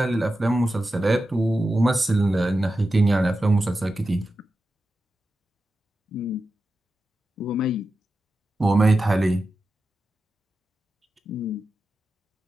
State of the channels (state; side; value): normal; both; correlation 0.91